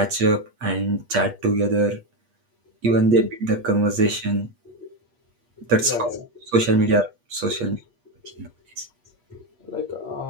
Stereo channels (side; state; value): left; late; 8.4 ms